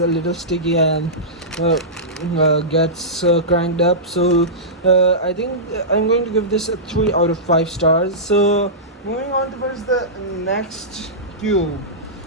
little sticky and gets cranked up. So I think I'm going to give this a 3 out of 5 stars. So moving on towards the next cube.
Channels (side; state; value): both; normal; correlation -0.16